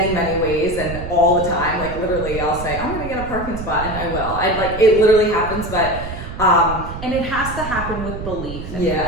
many ways, and all the time. Like literally, I'll say, I'm gonna get a parking spot, and I will. It literally happens, but and it has to happen with belief and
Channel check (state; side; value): noise; right; rumble, 9 dB below the sound